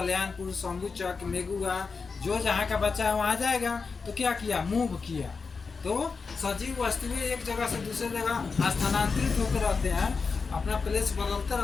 शंभुचक, मेघुआ, जो जहाँ का बच्चा है वहाँ जाएगा, तो क्या किया, मूव किया। तो सजीव वस्तुएं एक जगह से दूसरे जगह स्थानांतरित होकर रहते हैं, अपना प्लेस बदलते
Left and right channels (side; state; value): right; quieter; 4.9 dB